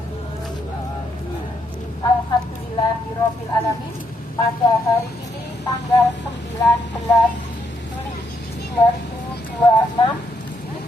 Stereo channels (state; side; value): normal; both; correlation 0.76